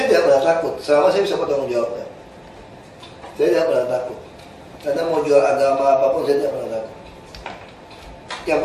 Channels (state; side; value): identical; both; correlation 1.00